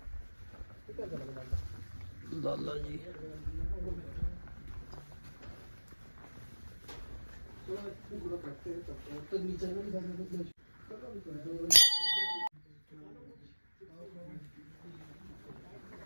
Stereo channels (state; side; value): inverted; both; correlation -1.00